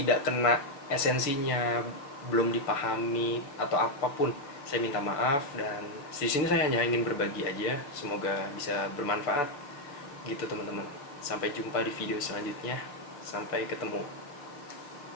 kena esensinya, belum dipahami atau apapun. Saya minta maaf, dan di sini saya hanya ingin berbagi aja. Semoga bisa bermanfaat gitu teman-teman. Sampai jumpa di video selanjutnya. Sampai ketemu.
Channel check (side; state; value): right; late; 7.1 ms